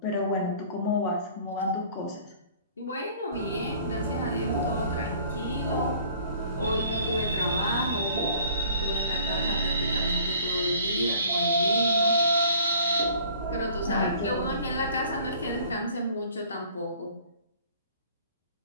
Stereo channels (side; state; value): both; inverted; correlation -0.52